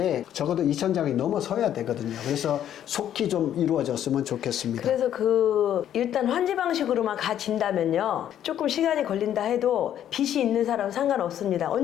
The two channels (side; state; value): right; quieter; 10.6 dB